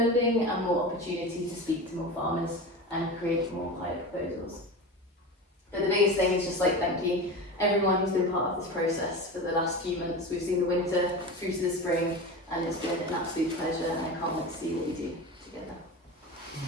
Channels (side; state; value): both; normal; correlation 0.27